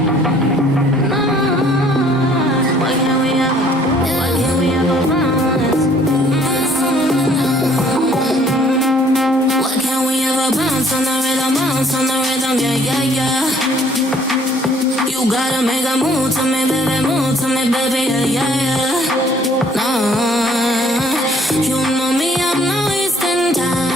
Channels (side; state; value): both; normal; correlation 0.60